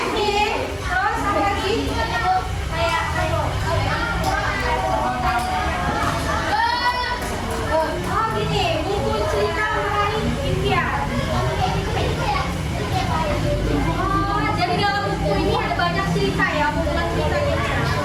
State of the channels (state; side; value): identical; both; correlation 1.00